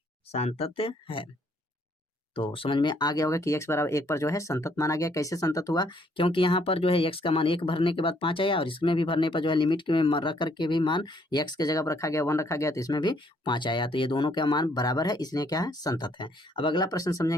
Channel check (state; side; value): normal; both; correlation 0.67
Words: सांतत्य है। तो समझ में आ गया होगा कि x बराबर 1 पर जो है संतत माना गया। कैसे संतत हुआ, क्योंकि यहाँ पर जो है x का मान 1 भरने के बाद 5 आया, और इसमें भी भरने पर जो है लिमिट के में रख करके भी मान x के जगह पर रखा गया 1 रखा गया, तो इसमें भी 5 आया। तो ये दोनों का मान बराबर है, इसलिए क्या है, संतत है। अब अगला प्रश्न